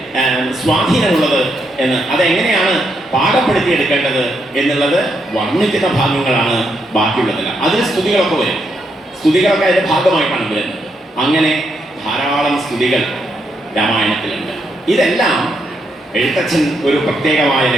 സ്വാധീനമുള്ളത് എന്ന്, അതെങ്ങനെയാണ് പാകപ്പെടുത്തിയെടുക്കേണ്ടത് എന്നുള്ളത് വർണ്ണിക്കുന്ന ഭാഗങ്ങളാണ് ബാക്കിയുള്ളതെല്ലാം. അതിൽ സ്തുതികളൊക്കെ വരും. സ്തുതികളൊക്കെ അതിൻ്റെ ഭാഗമായിട്ടാണ് വരുന്നത്. അങ്ങനെ ധാരാളം സ്തുതികൾ രാമായണത്തിലുണ്ട്. ഇതെല്ലാം എഴുത്തച്ഛൻ ഒരു പ്രത്യേകമായ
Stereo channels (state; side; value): normal; both; correlation 0.79